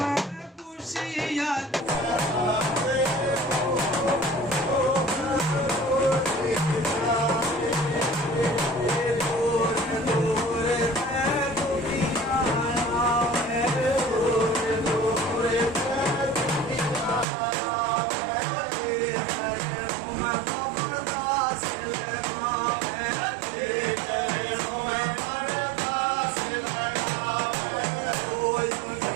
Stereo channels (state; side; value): drops out; left; at 17.2 s